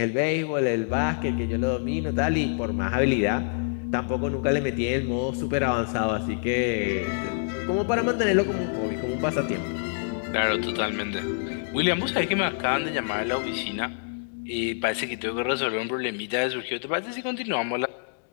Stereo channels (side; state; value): right; silent; digital silence